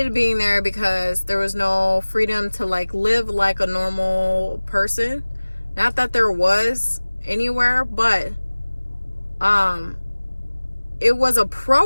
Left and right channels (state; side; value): inverted; both; correlation -1.00